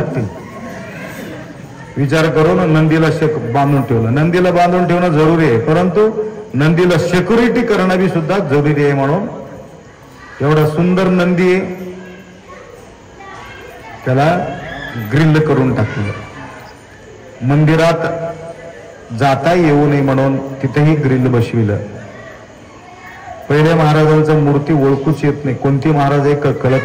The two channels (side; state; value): both; identical; correlation 1.00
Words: विचार करून नंदीला बांधून ठेवलं. नंदीला बांधून ठेवणं जरुरी आहे, परंतु नंदीला सिक्युरिटी करणं बी सुद्धा जरुरी आहे. म्हणून एवढा सुंदर नंदी आहे, त्याला ग्रिल करून टाकलं. मंदिरात जाता येऊ नये म्हणून तिथेही ग्रिल बसविलं. पहिले महाराजांचं मूर्ती ओळखूच येत नाही, कोणती महाराज एक